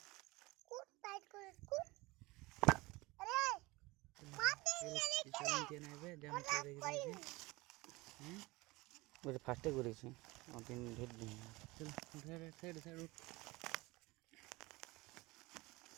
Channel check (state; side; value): quieter; left; 22.3 dB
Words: কুট টাইট করে কুট আরে মারতে গেলে খেলে নিচে নেবে যেমন করে রেখে দিয়েছি বলে ফার্স্টে করেছি অদিন ধরে দিই চল সাইড সাইড উঠ